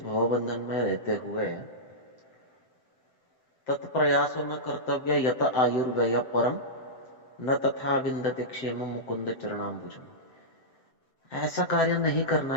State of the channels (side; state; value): right; late; 7.7 ms